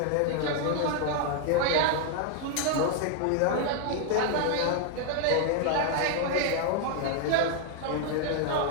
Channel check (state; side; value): different; both; correlation 0.00